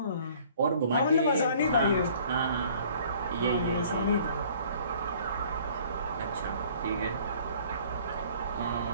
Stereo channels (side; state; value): both; inverted; correlation -0.54